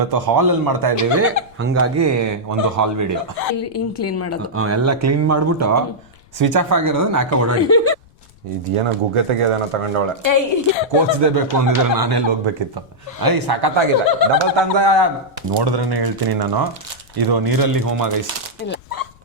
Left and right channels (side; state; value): left; noise; rumble, 28 dB below the sound